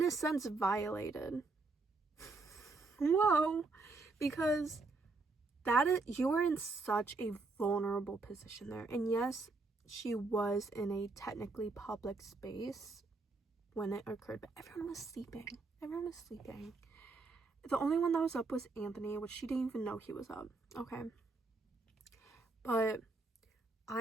a sense, violated. Whoa. Because you were in such a vulnerable position there. And yes, she was in a technically public space when it occurred, but everyone was sleeping. The only one that was up was Anthony, which she didn't even know he was up. Okay. But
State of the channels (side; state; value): left; quieter; 3.7 dB